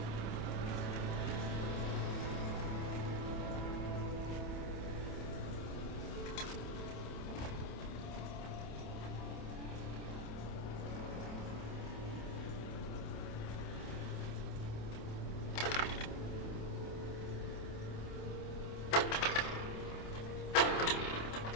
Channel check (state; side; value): late; right; 27 ms